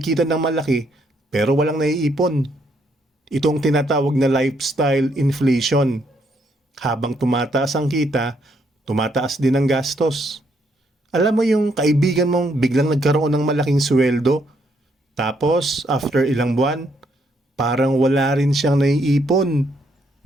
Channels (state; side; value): normal; both; correlation 0.73